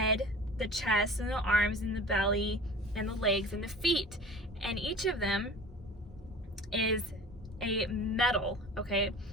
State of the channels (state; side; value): normal; both; correlation 0.41